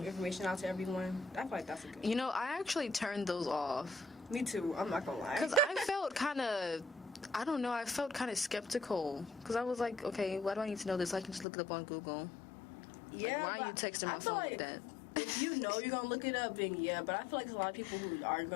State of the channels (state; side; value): drops out; right; at 11.5 s